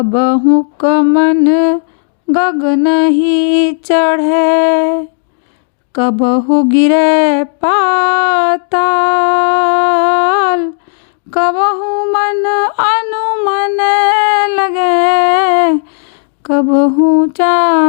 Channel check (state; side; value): silent; right; 73 dB below the other